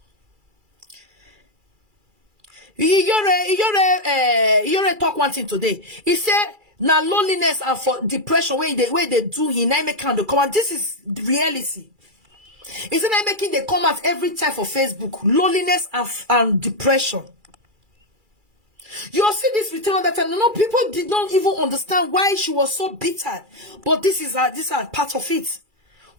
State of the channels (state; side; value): late; left; 2.3 ms